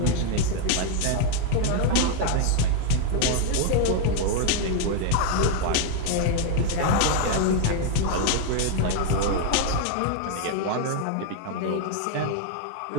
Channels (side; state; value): both; different; correlation 0.00